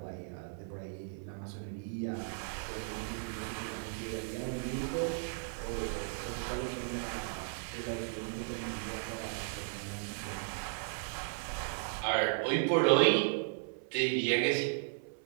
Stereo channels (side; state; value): left; silent; 54 dB below the other